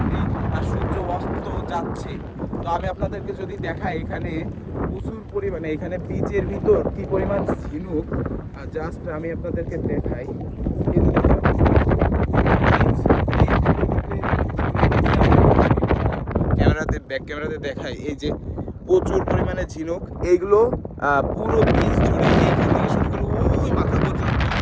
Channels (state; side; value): identical; both; correlation 1.00